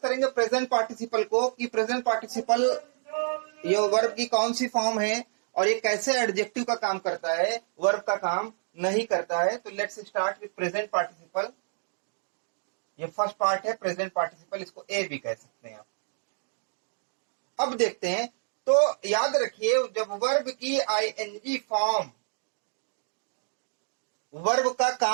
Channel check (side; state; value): left; silent; digital silence